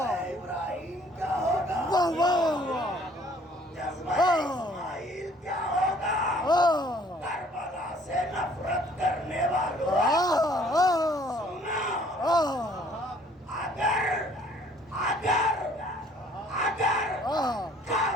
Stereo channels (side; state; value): both; normal; correlation 0.58